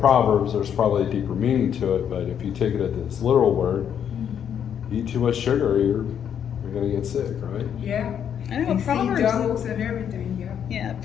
there's probably a deeper meaning to it, but if you take it at its literal word, eat too much sugar, you're gonna get sick, right? Yeah. I know And see Proverbs. doubles and everything, yeah. Yeah,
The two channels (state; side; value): quieter; right; 8.7 dB